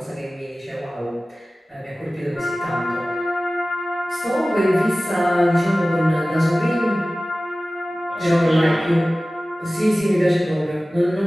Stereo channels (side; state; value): both; normal; correlation 0.97